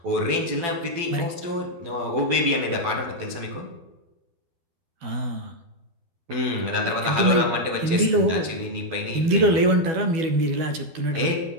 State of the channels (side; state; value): left; late; 12 ms